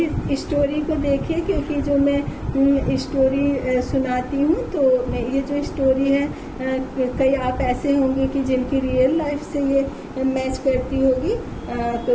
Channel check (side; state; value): both; identical; correlation 1.00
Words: स्टोरी को देखिए, क्योंकि जो मैं स्टोरी सुनाती हूँ, तो ये जो स्टोरी है कई आप ऐसे होंगे कि जिनकी रियल लाइफ से ये मैच करती होगी। तो